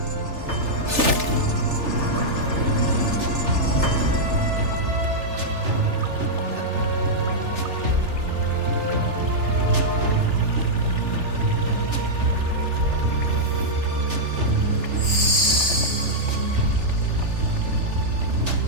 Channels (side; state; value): left; late; 3.4 ms